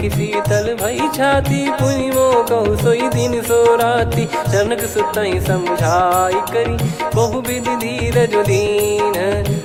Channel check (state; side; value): identical; both; correlation 1.00